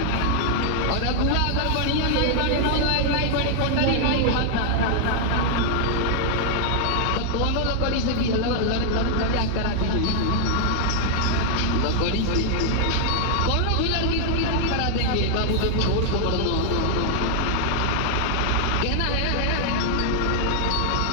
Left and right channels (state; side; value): different; both; correlation 0.00